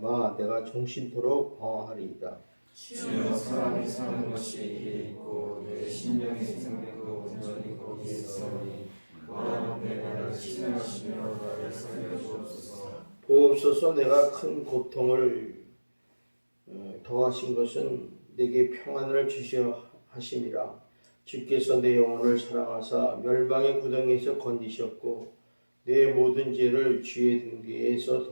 내가 종신토록 방황하리이다. 주여, 사람이 사는 것이 이에 있고 내 심령의 생명도 온전히 거기에 있사오니 원하건대 나를 치료하시며 나를 살려주옵소서. 보옵소서. 내가 큰 고통을 더하신 것은 내게 평안을 주시어 하심이라. 주께서 내 영혼을 사랑하사 멸망의 구덩이에서 건지셨고 내 모든 죄를 주의 등 뒤에서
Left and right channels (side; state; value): both; inverted; correlation -1.00